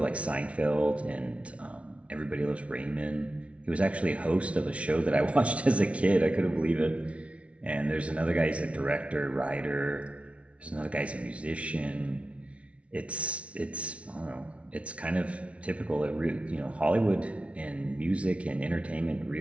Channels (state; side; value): late; left; 0.062 ms